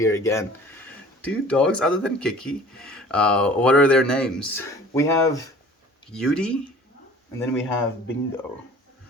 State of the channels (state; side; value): normal; both; correlation 0.47